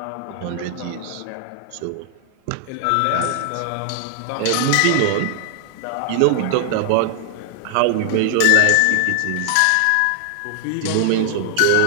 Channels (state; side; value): different; both; correlation 0.00